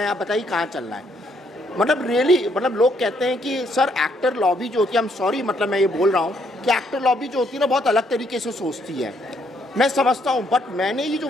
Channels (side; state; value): both; normal; correlation 0.71